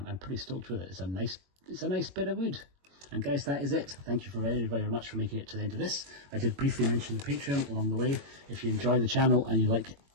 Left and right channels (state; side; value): late; left; 21 ms